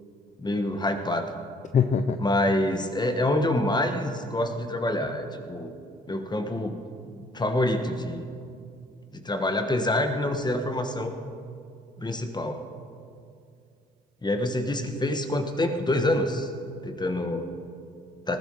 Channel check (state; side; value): normal; both; correlation 0.62